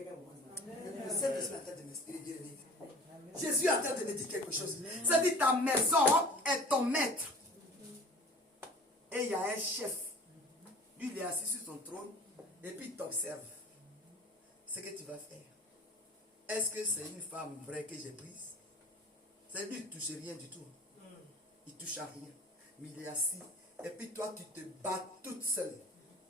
voit ça? Le Saint-Esprit est en train de m'expliquer. Jésus est en train de me dire quelque chose. C'est-à-dire ta maison est ton maître. Et il y a un chef. Lui, il est assis sur son trône. Et puis il t'observe. Ce que tu vas faire. Est-ce que c'est une femme vraie que j'ai prise? C'est lui, il ne touche rien du tout. Il ne touche à rien. Mais il est assis. Et puis toi, tu te bats toute seule.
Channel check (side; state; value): both; normal; correlation 0.45